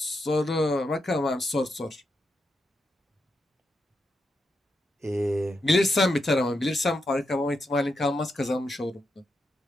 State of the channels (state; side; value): normal; both; correlation 0.84